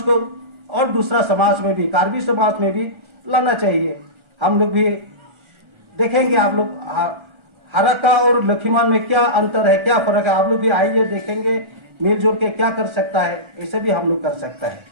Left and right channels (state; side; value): late; left; 1.4 ms